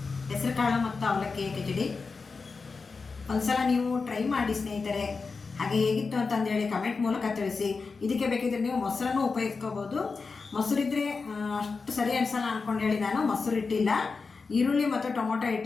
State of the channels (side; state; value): right; quieter; 4.5 dB